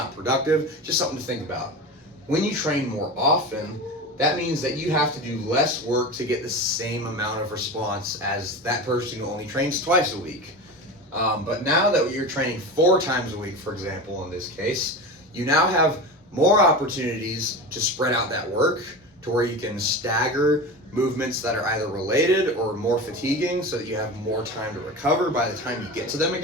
productive, just something to think about. When you train more often, that means that you have to do less work to get the same amount of response as that person who only trains twice a week. But now that you're training 4 times a week, for example, in this case, you now have more opportunities to spread out that work to where you can stagger movements that are either related or more fatiguing so that you have more time to recover by the time you get to them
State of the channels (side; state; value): both; normal; correlation 0.28